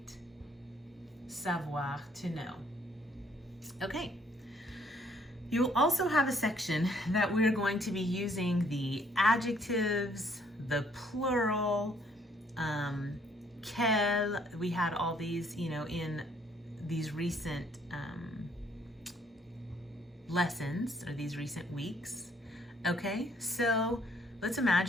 Savoir, to know. Okay. You'll also have a section that we're going to be using the adjectives, the plural, quel. We had all these, in these recent lessons or these recent weeks. Okay, so let's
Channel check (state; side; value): normal; both; correlation 0.65